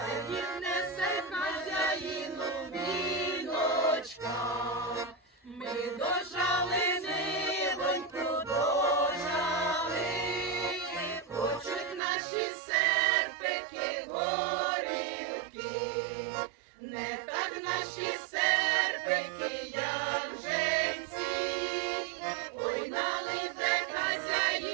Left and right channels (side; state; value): left; drops out; at 12.0 s